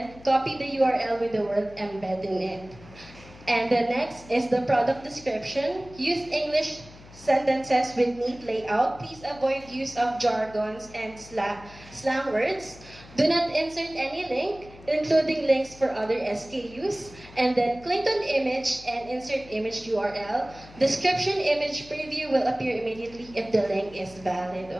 Copy the URL with the word embed in it. And the next is the product description. Use English sentences with neat layout. Please avoid use of jargons and slang words. Do not insert any link, including links for other SKUs. And then click on image and insert image URL. Description image preview will appear immediately if the link is valid.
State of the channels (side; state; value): left; noise; hum, 20 dB below the sound